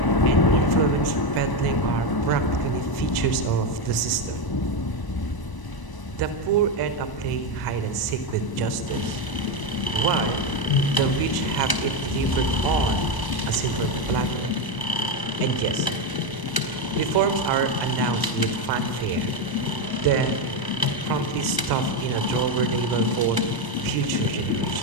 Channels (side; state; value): right; late; 1.0 ms